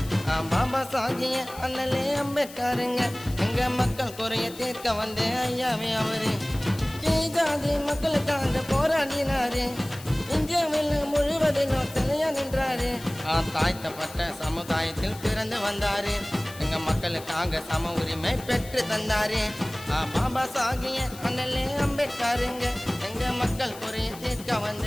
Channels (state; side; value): noise; left; hiss, 17 dB below the sound